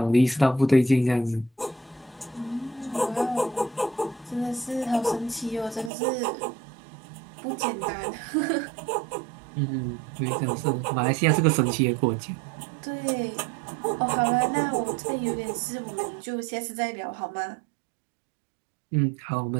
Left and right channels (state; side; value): drops out; left; at 5.9 s